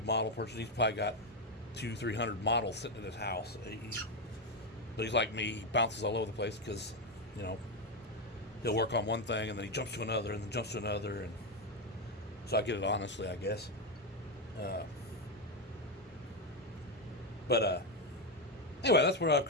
model person. He's probably got 200-300 models sitting in his house. But he's like me. He bounces all over the place because, you know, he'll work on one thing, and then he jumps to another, and then jumps to another, and so I get it honestly, I guess. Anyway, that's where I've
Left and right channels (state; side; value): normal; both; correlation 0.07